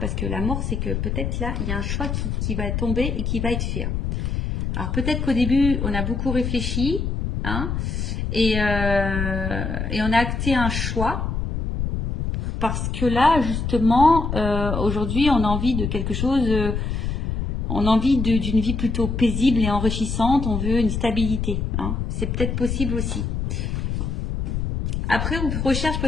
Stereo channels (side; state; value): left; noise; rumble, 2 dB below the sound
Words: que la mort, c'est que peut-être là, il y a un choix qui va tomber et qui va être fait. Alors, peut-être qu'au début, on a beaucoup réfléchi, hein, et on a acté un choix. Parce que là, justement, aujourd'hui, on a envie de quelque chose, on a envie d'une vie plutôt paisible et enrichissante, on veut une stabilité, hein. C'est peut-être possible aussi. Après, on recherche